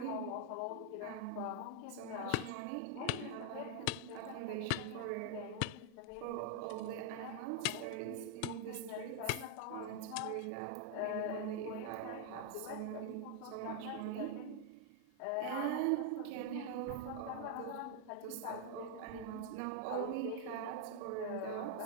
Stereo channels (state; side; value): different; both; correlation 0.00